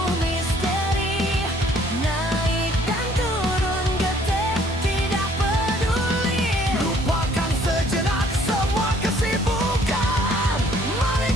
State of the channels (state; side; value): normal; both; correlation 0.60